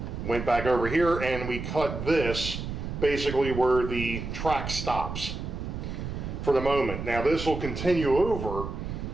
went back over here and we cut this basically where the track stops for the moment. Now this will continue over,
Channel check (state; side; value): noise; right; rumble, 6 dB below the sound